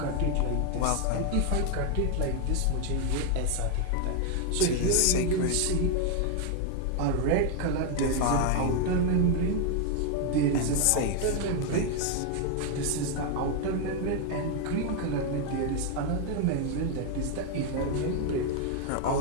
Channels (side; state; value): both; different; correlation 0.01